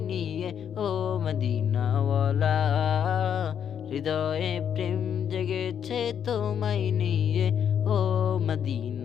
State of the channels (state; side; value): quieter; right; 8.5 dB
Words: নিয়ে ও মদিনাওয়ালা। হৃদয়ে প্রেম জেগেছে তোমায় নিয়ে ও